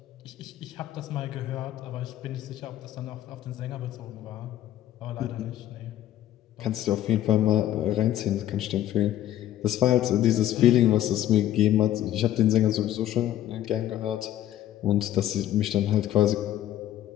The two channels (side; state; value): right; quieter; 12.5 dB